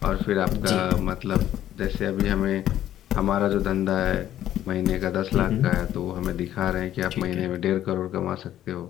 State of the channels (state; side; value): quieter; right; 12.0 dB